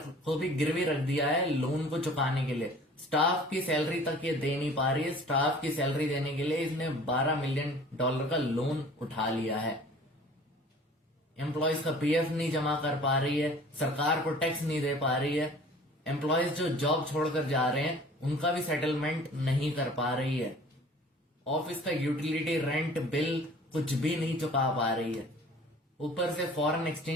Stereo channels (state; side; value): normal; both; correlation 0.47